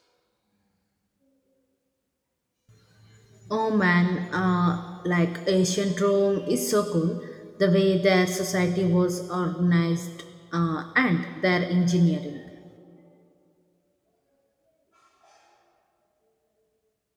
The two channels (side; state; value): both; identical; correlation 1.00